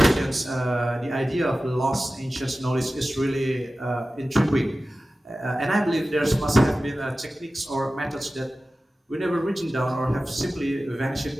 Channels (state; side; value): normal; both; correlation 0.95